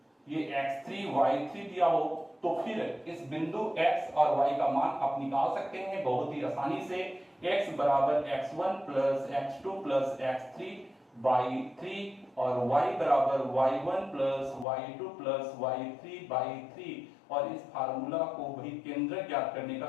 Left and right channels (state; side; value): drops out; right; at 14.7 s